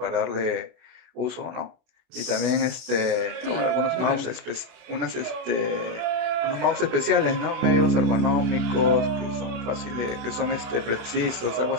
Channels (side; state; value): left; late; 32 ms